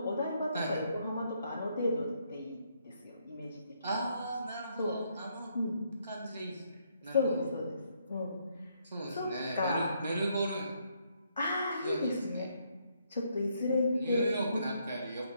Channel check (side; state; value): both; inverted; correlation -0.73